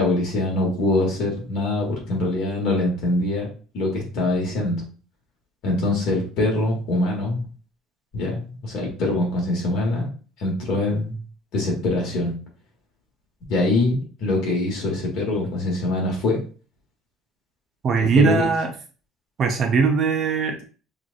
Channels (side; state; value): both; normal; correlation 0.50